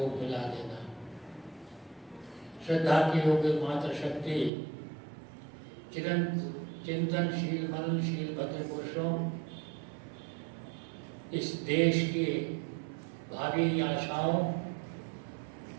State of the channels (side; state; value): left; drops out; at 4.5 s